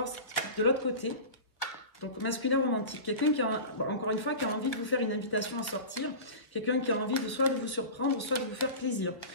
de l'autre côté. Donc, masculin romantique. Quelqu'un qui a, encore une fois, qui a envie de vous faire une invitation à sortir. Quelqu'un qui a envie de soit de vous surprendre, soit de vous faire plaisir.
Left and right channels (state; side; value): late; right; 1.3 ms